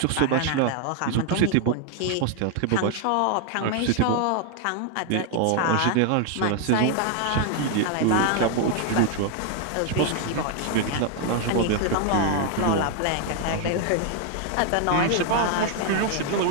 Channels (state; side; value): different; both; correlation 0.00